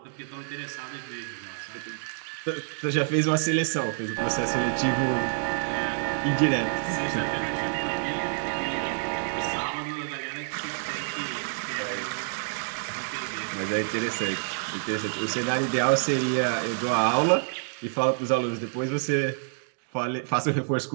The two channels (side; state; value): left; silent; digital silence